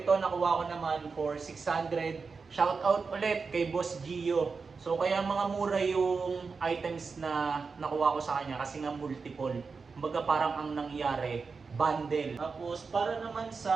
nakuha ko naman for 600. Shout out ulit kay Boss Gio. So kaya mga mura yung items na nakuha ko sa kanya kasi nga multiple. Kumbaga parang ang nangyari, bundle. Tapos para naman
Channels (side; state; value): left; quieter; 4.8 dB